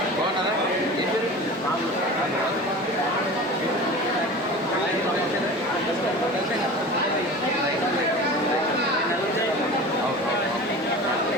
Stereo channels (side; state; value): both; normal; correlation 0.35